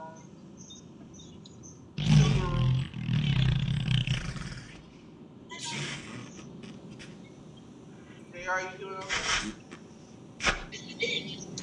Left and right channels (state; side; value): identical; both; correlation 1.00